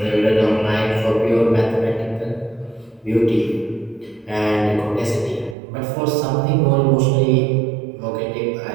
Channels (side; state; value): left; drops out; at 5.6 s